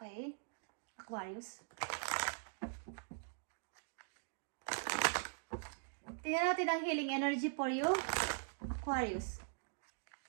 Aquarius. Tingnan natin ang healing energy for you. Aquarius.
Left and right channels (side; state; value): left; silent; digital silence